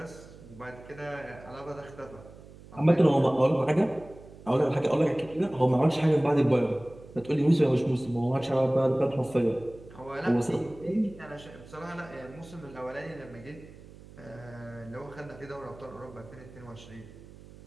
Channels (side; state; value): right; noise; hum, 19 dB below the sound